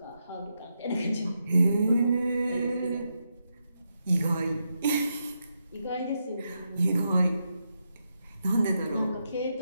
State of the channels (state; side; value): inverted; both; correlation -0.84